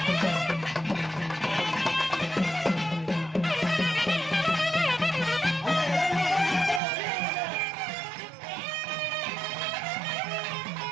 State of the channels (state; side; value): drops out; left; at 6.8 s